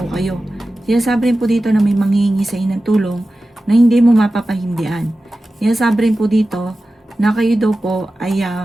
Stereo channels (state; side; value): normal; both; correlation 0.94